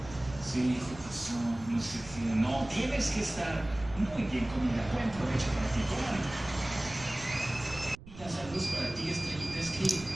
Sí, ¿qué pasó? No sé qué. No, tienes que estar muy bien comida. Buen provecho para ti, comadre. Saludos para ti, Estrellita. Es que,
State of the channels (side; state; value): right; noise; rumble, 17 dB below the sound